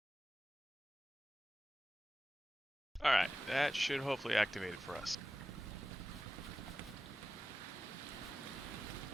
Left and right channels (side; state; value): both; normal; correlation 0.93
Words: Alright, that should hopefully activate it for us.